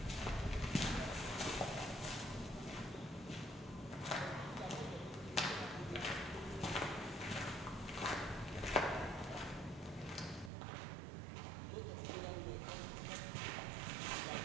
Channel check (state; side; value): drops out; left; at 10.5 s